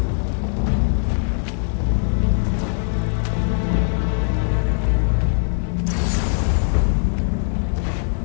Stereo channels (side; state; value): right; silent; digital silence